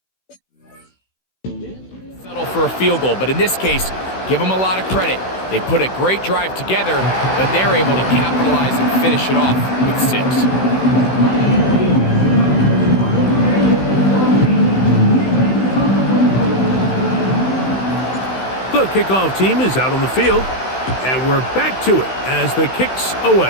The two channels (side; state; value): right; late; 16 ms